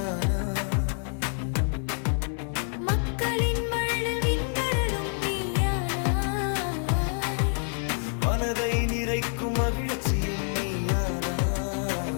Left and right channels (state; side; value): silent; right; 59 dB below the other